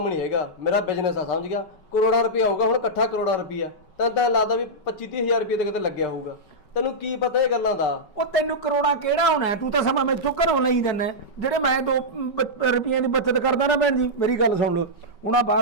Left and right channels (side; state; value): right; late; 5.3 ms